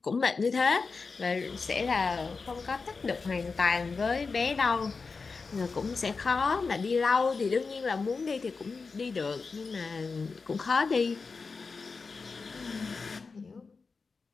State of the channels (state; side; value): quieter; right; 4.5 dB